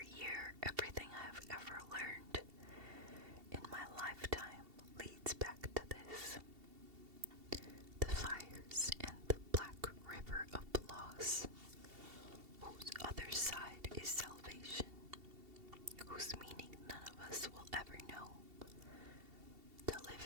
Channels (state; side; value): late; left; 2.7 ms